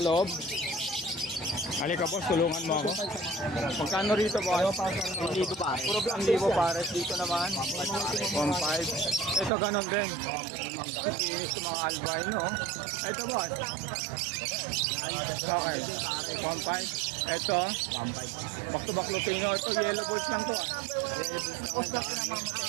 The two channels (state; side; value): drops out; left; at 9.5 s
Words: loob. Halika boss, tulungan mo ako. Magkano rito boss? Hindi ko pare. Puro ang libo pares. Dito naman. 1.5. Ito ganon din. Ang kikinis ng mga albino. oh. Ito boss. Okay. 1.5. Ito. 1.5. Back to back Lutino. Ito yellow balls lang to.